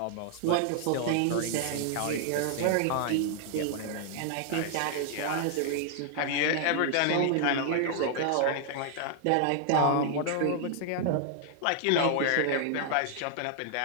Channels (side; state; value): both; different; correlation 0.00